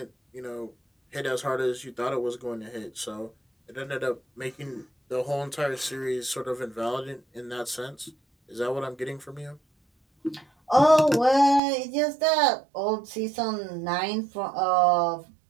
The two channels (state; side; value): drops out; left; at 11.6 s